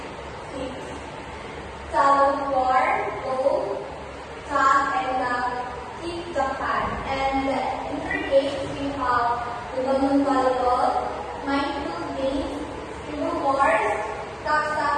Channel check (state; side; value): identical; both; correlation 1.00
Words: Balloon volleyball, mindful games, scribble wars, tap